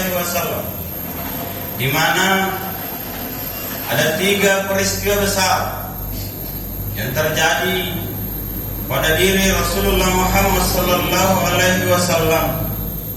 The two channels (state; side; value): identical; both; correlation 1.00